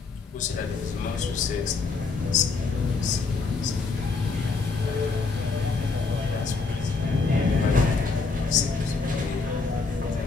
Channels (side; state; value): right; quieter; 4.3 dB